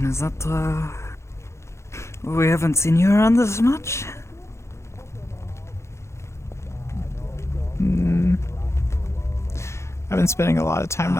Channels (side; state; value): right; late; 0.13 ms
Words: is that, we haven't seen you around this much? I've been spending a lot of time